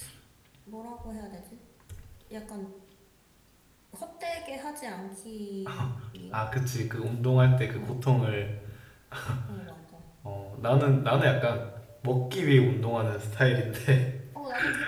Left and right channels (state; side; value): identical; both; correlation 1.00